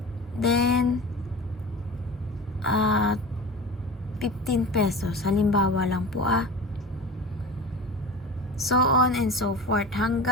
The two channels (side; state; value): both; normal; correlation 0.33